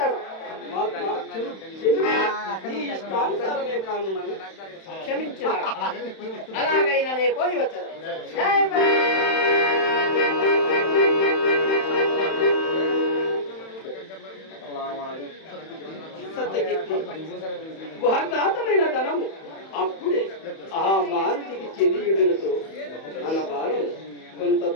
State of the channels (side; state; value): right; late; 31 ms